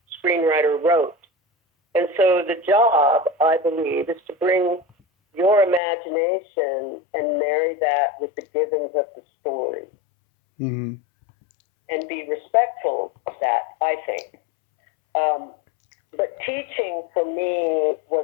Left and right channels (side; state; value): right; drops out; at 5.8 s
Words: screenwriter wrote. And so the job, I believe, is to bring your imagination and marry that with the givens of the story. Mm-hmm. And be respectful of that, I think. But teaching for me